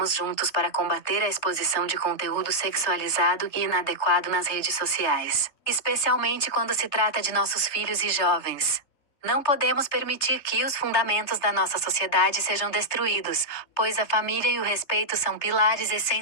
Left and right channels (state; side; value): late; right; 3.3 ms